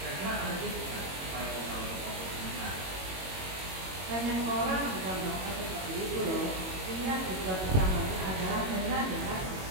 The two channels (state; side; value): late; left; 22 ms